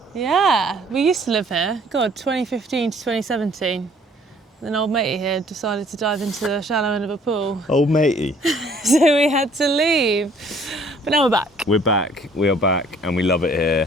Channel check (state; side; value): normal; both; correlation 0.58